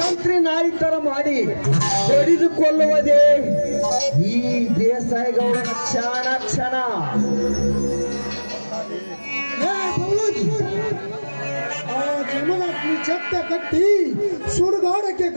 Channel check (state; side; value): inverted; both; correlation -1.00